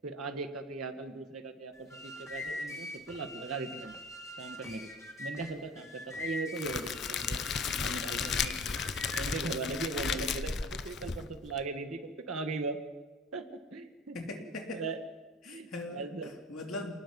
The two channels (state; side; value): normal; both; correlation 0.42